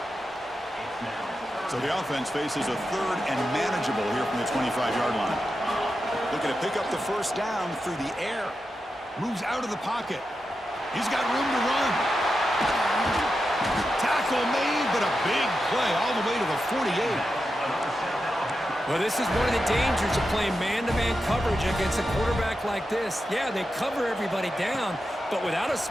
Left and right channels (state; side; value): normal; both; correlation 0.89